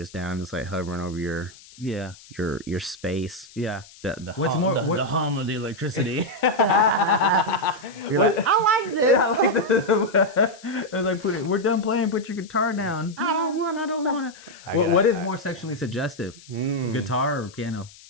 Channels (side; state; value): left; noise; hiss, 22 dB below the sound